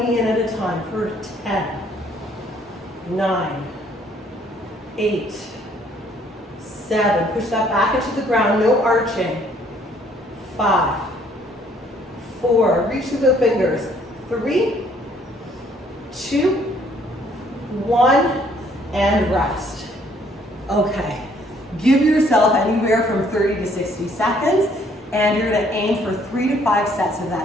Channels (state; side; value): normal; both; correlation 0.63